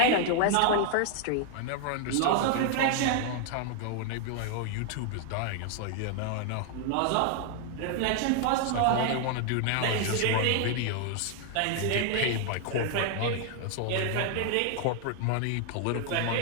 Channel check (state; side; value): different; both; correlation 0.00